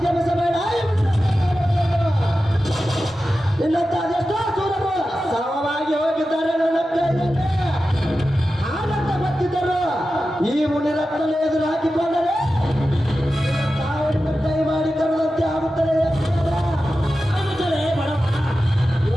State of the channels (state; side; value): normal; both; correlation 0.93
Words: ಮಿಸಬೇಡ ಇನ್ನಂತ ಅದೆಷ್ಟೋ ಸೂರರು ಸಮವಾಗಿ ಹೋಗಿದ್ದಾರೆ ನನ್ನ ಕೈಯಲ್ಲಿ ಹಾಗಂತ ಗೊತ್ತಿದ್ದರು ಈ ಮುನಿರತ್ನ ಎದುರು ಹಾಕಿಕೊಂಡರೆ ಸಾವಿನ ಕೈ ಮಾಡಿ ಕರೆದಂತೆ ಆಗುತ್ತದೆ